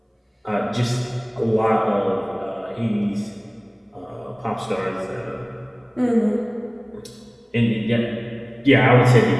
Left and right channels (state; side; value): identical; both; correlation 1.00